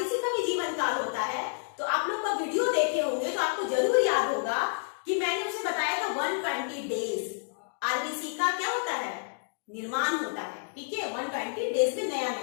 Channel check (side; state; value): right; silent; digital silence